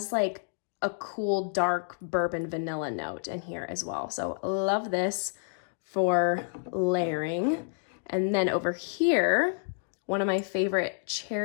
like a cool dark bourbon vanilla note in here as well. So love this for layering. And then over here, one of my favorite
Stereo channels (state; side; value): silent; right; digital silence